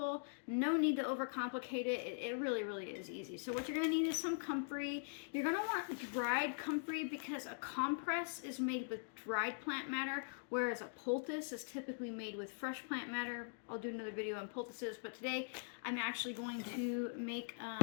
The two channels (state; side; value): silent; right; digital silence